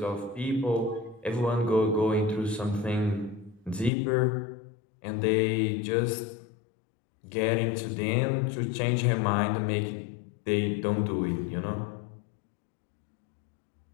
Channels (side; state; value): right; drops out; at 3.9 s